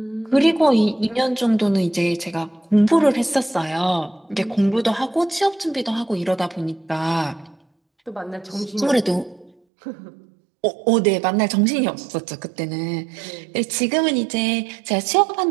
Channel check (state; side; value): drops out; left; at 9.5 s